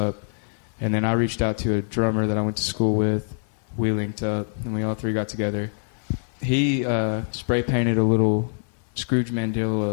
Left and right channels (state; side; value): silent; right; digital silence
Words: And then I reached out to a drummer that I went to school with. We linked up, and we all three got together. He spray painted a little Scrooge